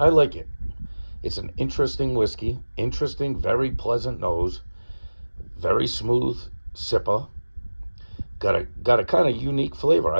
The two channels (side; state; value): both; inverted; correlation -1.00